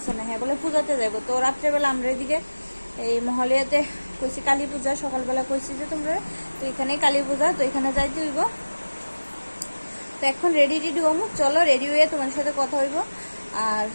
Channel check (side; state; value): both; inverted; correlation -1.00